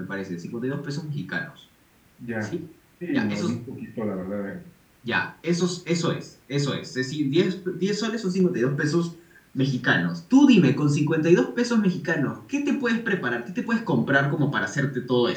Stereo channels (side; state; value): both; identical; correlation 1.00